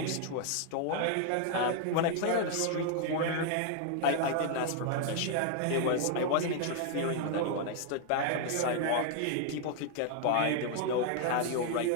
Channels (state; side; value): different; both; correlation 0.00